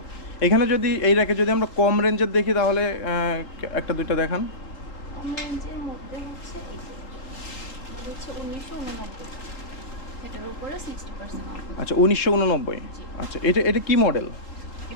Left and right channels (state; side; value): late; right; 3.9 ms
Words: এখানে যদি এই র্যাকে যদি আমরা কম রেঞ্জের দেখি তাহলে একটা দুইটা দেখান। কম রেঞ্জের মধ্যে হচ্ছে এই যে এটা হচ্ছে 1989, এটার উপরে 60% অফ। আচ্ছা, 1989। জি, আচ্ছা, এটা এটা কি মডেল?